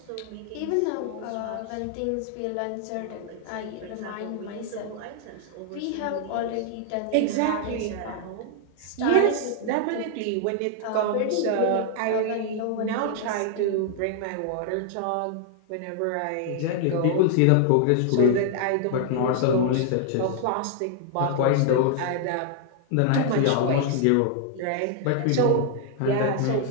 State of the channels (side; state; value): both; different; correlation 0.00